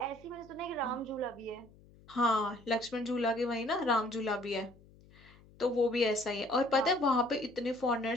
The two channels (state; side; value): noise; left; hum, 25 dB below the sound